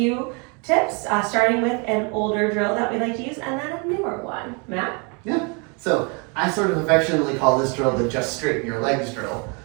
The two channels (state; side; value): quieter; left; 33.1 dB